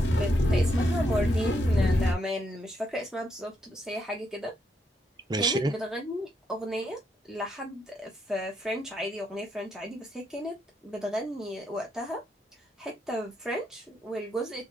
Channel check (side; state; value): both; normal; correlation 0.79